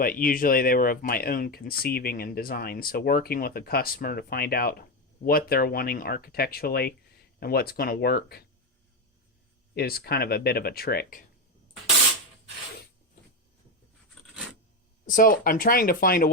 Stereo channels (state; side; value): normal; both; correlation 0.12